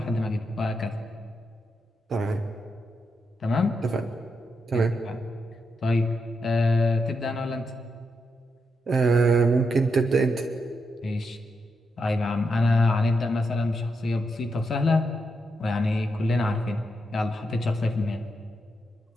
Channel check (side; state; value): both; normal; correlation 0.83